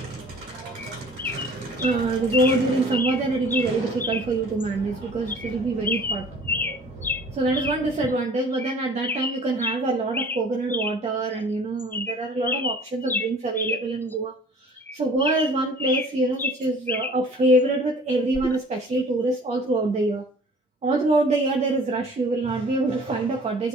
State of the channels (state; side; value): normal; both; correlation 0.48